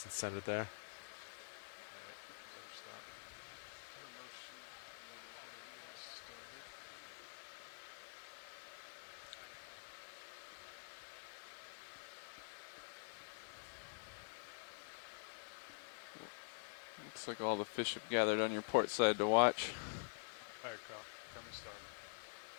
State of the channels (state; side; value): silent; right; digital silence